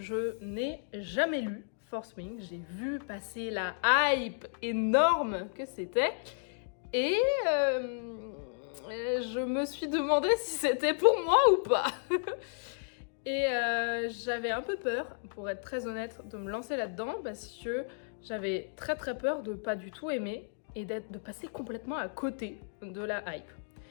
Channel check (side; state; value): right; silent; digital silence